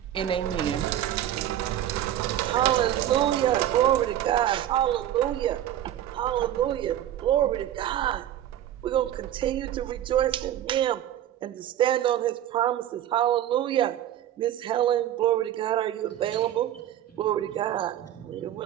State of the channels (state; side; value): quieter; left; 11.8 dB